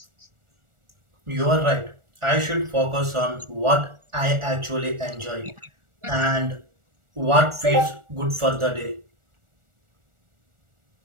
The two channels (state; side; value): late; left; 1.4 ms